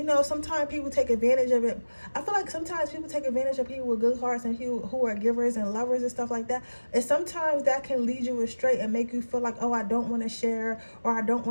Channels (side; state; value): both; inverted; correlation -1.00